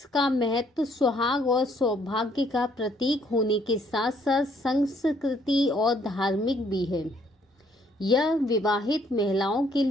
का महत्व सुहाग और सौभाग्य का प्रतीक होने के साथ साथ संस्कृति और धार्मिक भी है। यह विवाहित महिलाओं के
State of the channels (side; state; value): both; normal; correlation 0.66